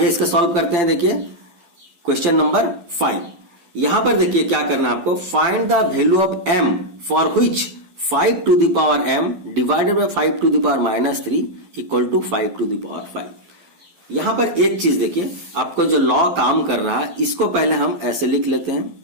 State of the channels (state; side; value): late; left; 12 ms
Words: इसका सॉल्व करते हैं। देखिए क्वेश्चन नंबर 5। यहां पर देखिए क्या करना है आपको, find the value of m for which 5 to the power m divided by 5 to the power -3 equal to 5 to the power 5। यहां पर एक चीज देखिए, आपको जो लॉ काम कर रहा है इसको पहले हम ऐसे लिख लेते हैं,